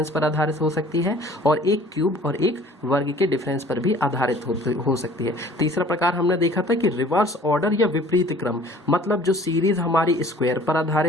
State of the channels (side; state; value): both; normal; correlation 0.51